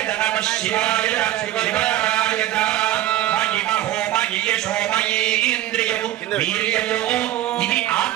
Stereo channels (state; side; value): quieter; left; 14.0 dB